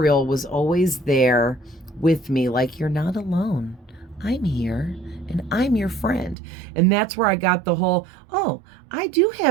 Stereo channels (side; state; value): left; drops out; at 6.4 s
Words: was always there with me, like, you're not alone. I'm here and I'm your friend. And that's where I got the whole, oh, I do